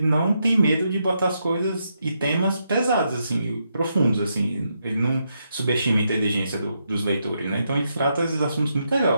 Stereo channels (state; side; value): inverted; both; correlation -0.81